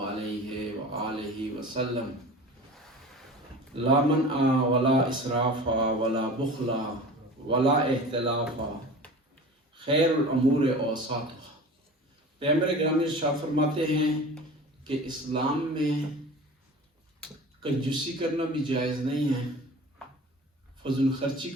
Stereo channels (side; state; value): both; normal; correlation 0.37